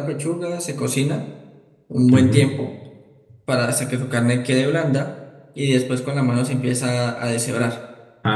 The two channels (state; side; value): identical; both; correlation 1.00